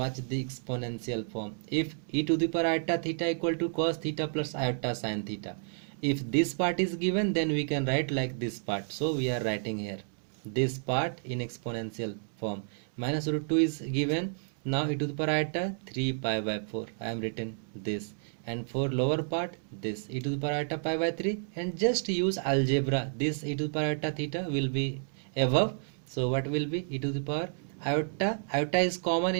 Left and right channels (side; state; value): left; silent; 57 dB below the other